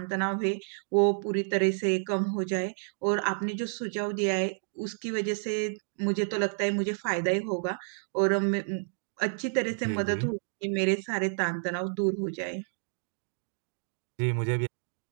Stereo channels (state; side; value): silent; left; digital silence